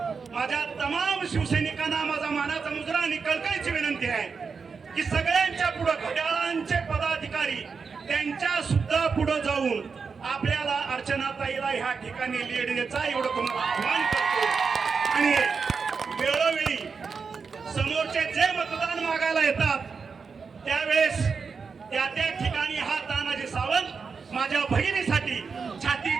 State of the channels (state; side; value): quieter; left; 5.3 dB